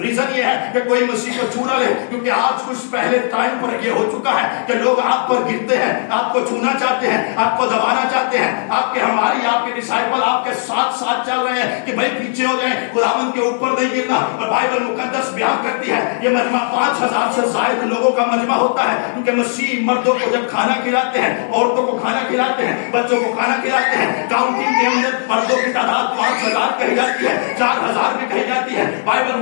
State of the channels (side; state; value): right; silent; 67 dB below the other